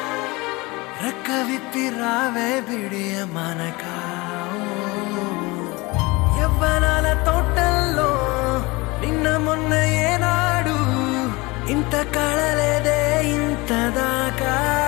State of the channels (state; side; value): quieter; right; 23.8 dB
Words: రెక్క విప్పి రావే బిడియ మనక. యవ్వనాల తోటల్లో నిన్న మొన్న ఏనాడు ఇంత కళలేదే ఇంత దాకా.